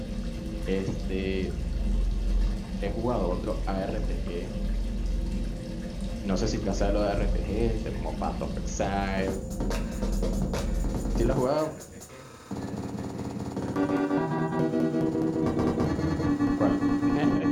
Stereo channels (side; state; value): both; identical; correlation 1.00